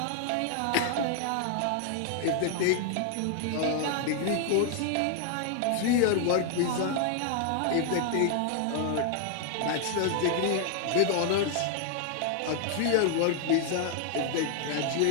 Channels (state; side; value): different; both; correlation 0.00